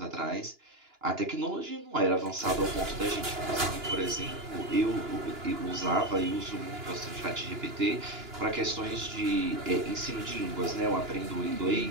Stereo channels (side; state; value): left; late; 2.9 ms